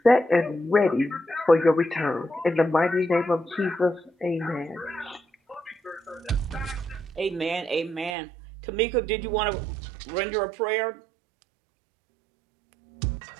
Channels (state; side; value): drops out; left; at 8.2 s